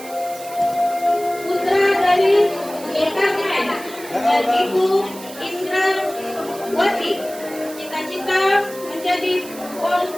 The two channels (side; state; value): right; noise; hiss, 16 dB below the sound